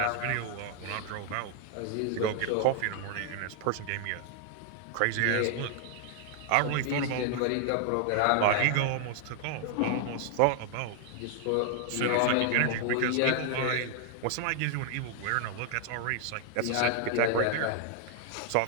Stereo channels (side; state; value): both; different; correlation 0.00